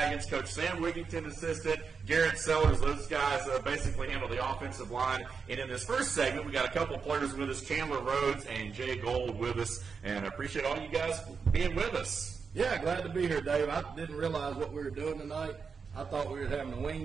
Coach Sam Wigington, assistant, Garrett Sellers. Those guys basically handle the offensive line. And in this first segment, we got a couple of players with us, Chandler Rhodes and Jay Gold with us, and I appreciate all you guys being with us. Yeah, glad to be here, Dave. I didn't realize what we were doing tonight. I thought we were having a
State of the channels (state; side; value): quieter; left; 5.5 dB